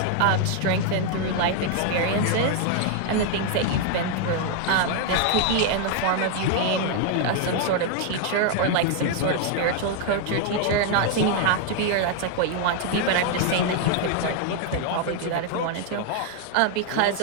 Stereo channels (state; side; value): different; both; correlation 0.00